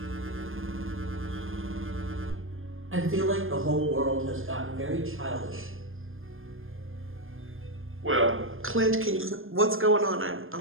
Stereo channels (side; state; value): left; late; 0.59 ms